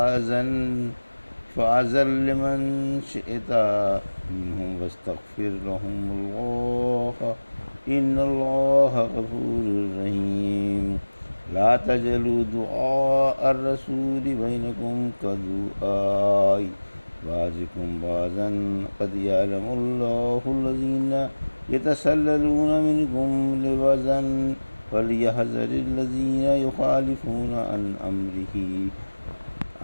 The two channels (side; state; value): both; inverted; correlation -1.00